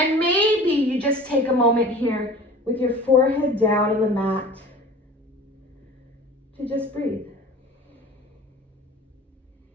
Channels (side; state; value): both; normal; correlation 0.42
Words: maybe you just take a moment here with your forehead down on the mat to just breathe.